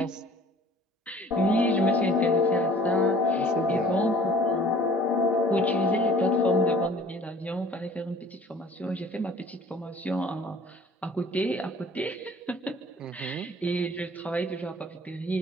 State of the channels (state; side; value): normal; both; correlation 0.50